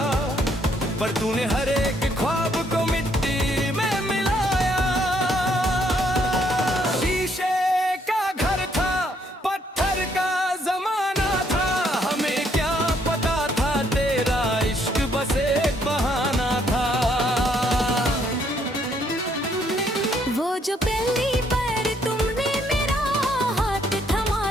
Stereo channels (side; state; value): both; normal; correlation 0.69